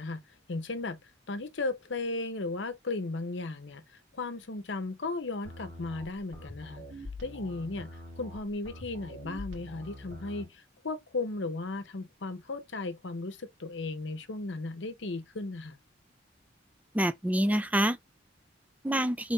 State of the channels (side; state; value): both; normal; correlation 0.51